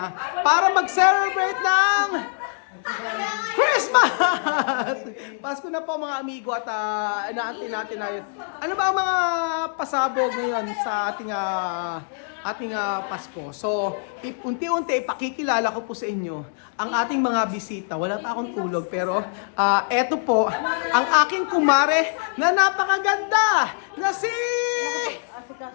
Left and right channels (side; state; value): right; silent; digital silence